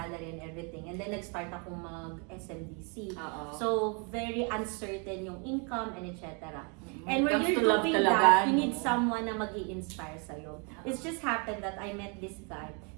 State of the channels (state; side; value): quieter; left; 35.3 dB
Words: and everything, and then nag-start akong mag-SMDC. So, very uncertain yung income and etc. And when Comes you're to love doing talaga, that, you no? need someone na mag-i-inspire sa'yo. It's just happened that I met this guy.